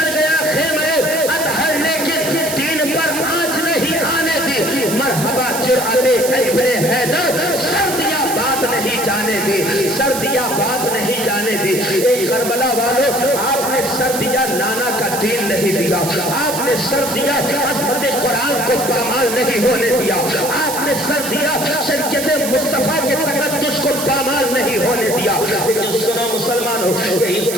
گیا خیمے اطہر لیکن دین پر آنچ نہیں آنے دی، مرحبا جرأت ابن حیدر، سردیاں بات نہیں جانے دی، سردیاں بات نہیں جانے دی۔ ایک کربلا والوں، آپ نے سردیاں نانا کا دین نہیں دیا، آپ نے سردیاں عظمت قرآن کو پامال نہیں ہونے دیا، آپ نے سردیاں شریعت مصطفیٰ کے تقدس کو پامال نہیں ہونے دیا۔ لیکن سنو مسلمانوں، یہی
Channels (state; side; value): noise; right; hiss, 6 dB below the sound